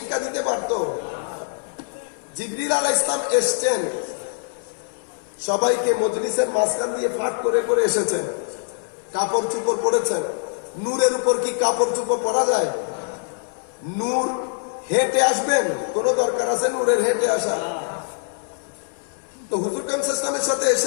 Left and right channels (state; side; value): silent; right; 62 dB below the other